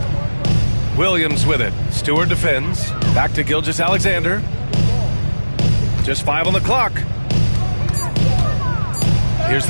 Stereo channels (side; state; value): both; inverted; correlation -1.00